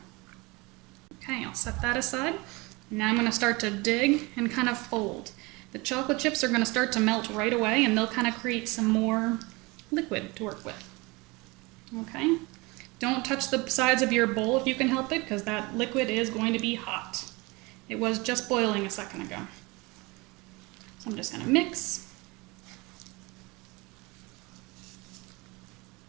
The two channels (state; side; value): quieter; left; 24.9 dB